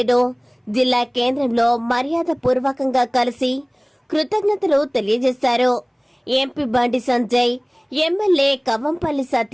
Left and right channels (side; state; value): both; identical; correlation 1.00